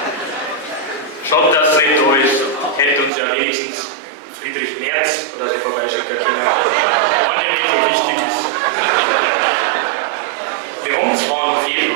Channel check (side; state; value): left; drops out; at 3.1 s